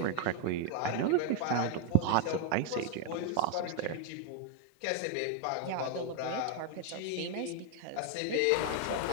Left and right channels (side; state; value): both; different; correlation 0.01